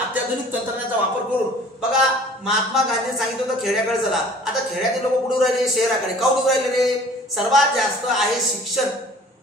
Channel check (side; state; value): both; normal; correlation 0.49